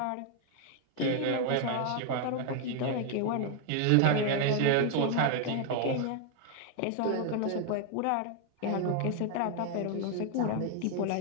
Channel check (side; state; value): both; different; correlation 0.00